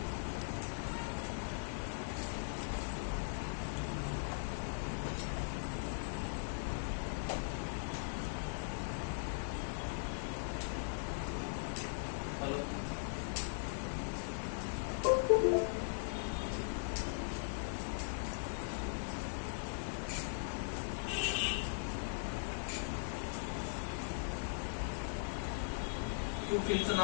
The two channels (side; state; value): right; silent; digital silence